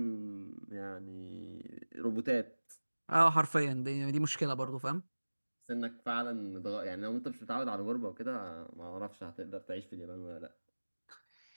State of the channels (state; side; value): inverted; both; correlation -1.00